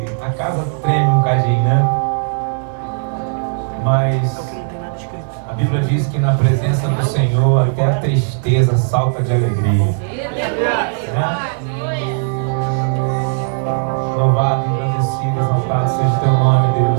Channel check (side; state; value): left; silent; digital silence